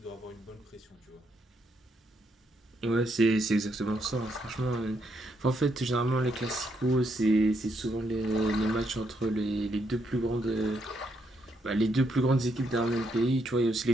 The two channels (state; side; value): normal; both; correlation 0.77